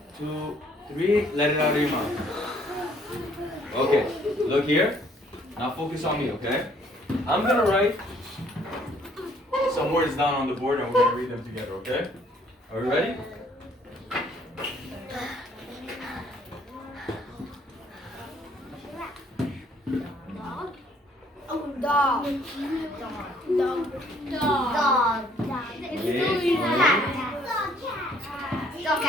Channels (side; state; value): both; normal; correlation 0.62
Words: 2, 3. Let it out of your mouth. Okay. Look here. Now focus on me, okay? I'm gonna write some words down on the board and we're gonna read them together, okay? Are we ready? Dog.